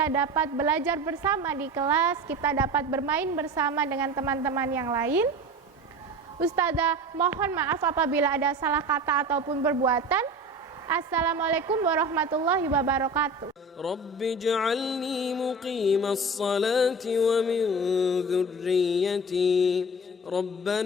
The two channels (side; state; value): both; normal; correlation 0.35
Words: dapat belajar bersama di kelas, kita dapat bermain bersama dengan teman-teman yang lain. Ustazah mohon maaf apabila ada salah kata ataupun perbuatan. Assalamualaikum warahmatullahi wabarakatuh. Rabbi ij'alni muqimas salati wa min dhurriyyati